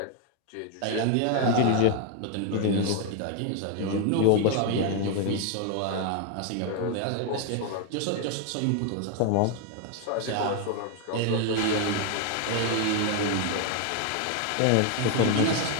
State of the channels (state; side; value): different; both; correlation 0.00